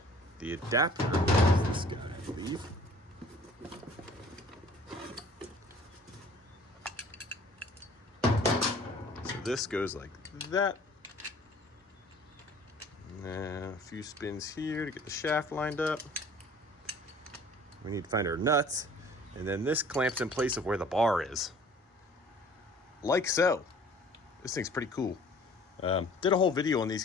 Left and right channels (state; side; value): normal; both; correlation 0.51